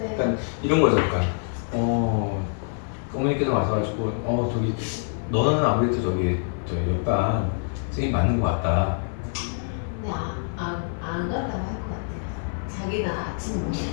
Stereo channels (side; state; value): right; silent; 57 dB below the other